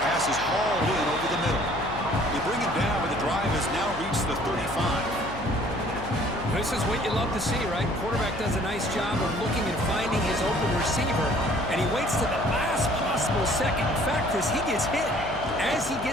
is hauled in over the middle. They bring him down, but the drive has now reached the 35. This is what you love to see, right? Quarterback does a nice job of looking and finding his open receiver, and he waits to the last possible possible second. In fact, Chris, he gets hit as he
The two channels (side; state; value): left; noise; hum, 11 dB below the sound